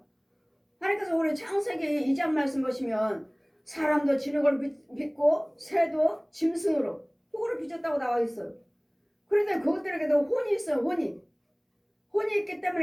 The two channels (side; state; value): both; identical; correlation 1.00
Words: 하나님께서 우리 창세기 2장 말씀 보시면 사람도 진흙을 빚고 새도 짐승으로 호를 빚었다고 나와 있어요. 그런데 그것들에게도 혼이 있어요. 혼이 있기